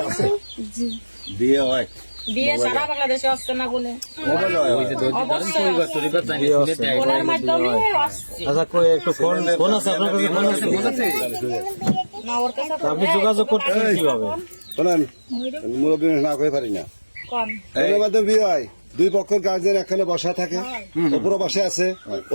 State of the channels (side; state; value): both; inverted; correlation -1.00